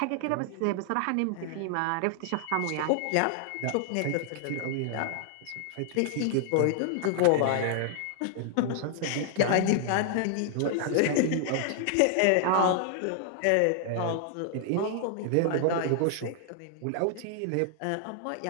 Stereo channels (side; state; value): both; different; correlation 0.00